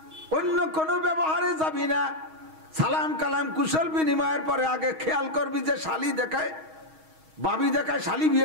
অন্য কোনো ব্যবহারে যাবি না। সালাম কালাম কুশল বিনিময়ের পরে আগে খেয়াল করবি যে শালি দেখায় বাবি দেখায় শালি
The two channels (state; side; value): late; left; 6.3 ms